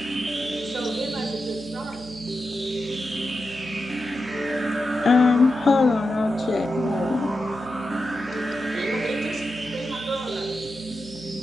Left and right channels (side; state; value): right; noise; hum, 18 dB below the sound